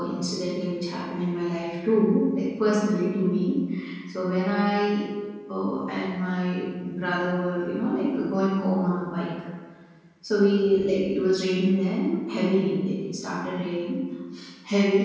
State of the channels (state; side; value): identical; both; correlation 1.00